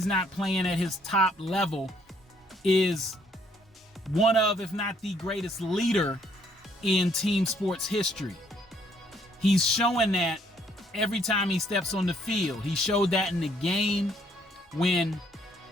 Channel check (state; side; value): normal; both; correlation 0.66